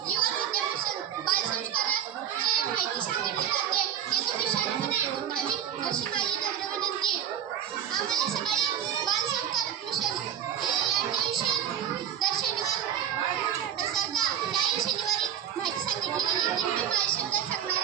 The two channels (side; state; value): left; quieter; 9.5 dB